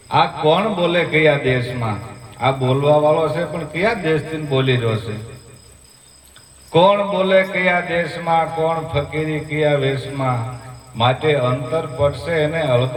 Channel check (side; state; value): both; identical; correlation 1.00